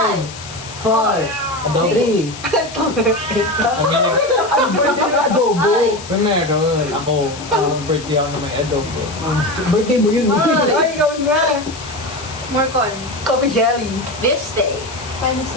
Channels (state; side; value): noise; left; hiss, 14 dB below the sound